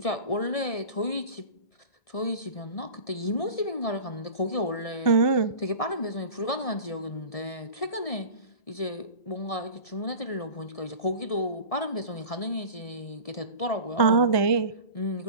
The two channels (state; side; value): late; right; 1.7 ms